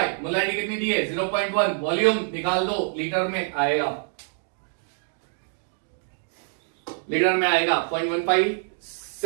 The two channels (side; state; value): left; silent; digital silence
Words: मोलरिटी कितनी दी है 0.1, वॉल्यूम निकाल दो लीटर में आएगा, लीटर में आएगा